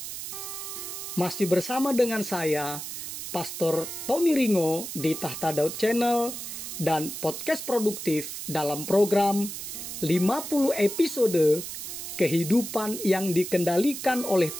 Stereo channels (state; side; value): noise; right; hiss, 8 dB below the sound